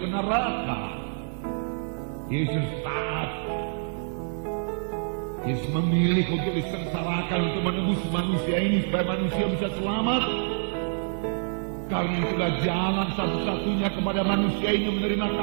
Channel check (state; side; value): silent; left; 60 dB below the other